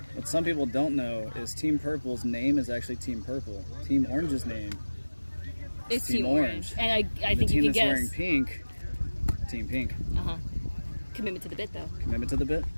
What some people don't know is Team Purple's name is actually Team Purple. Team Orange's name It's Team Team Orange. And I the think team you can that's wearing guess. pink, Team Pink. Commitment to the bit, though. Commitment to the bit.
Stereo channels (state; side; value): inverted; both; correlation -1.00